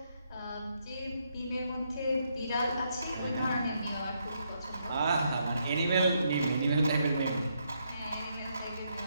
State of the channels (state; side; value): inverted; both; correlation -0.77